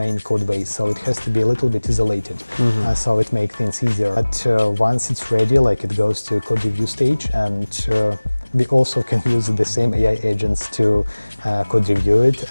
code base. So it has to be a little bit isolated. So it makes things easier. But once it's ready, like it goes to code review stage, and we also can use the same AI agents to code review it,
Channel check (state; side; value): inverted; both; correlation -1.00